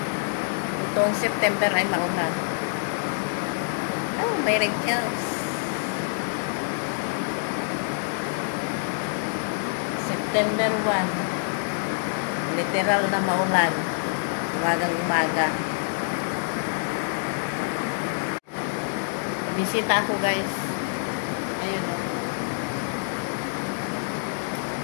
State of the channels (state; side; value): silent; right; digital silence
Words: Itong September ay maulan. Oh, may wrinkles. September 1. Literal na maulan. Umagang umaga. Bisita ako guys. Ayun o.